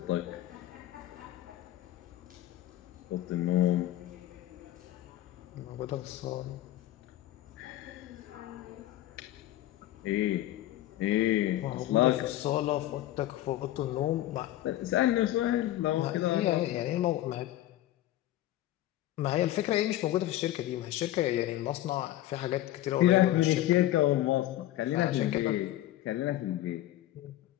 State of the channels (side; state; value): right; quieter; 14.3 dB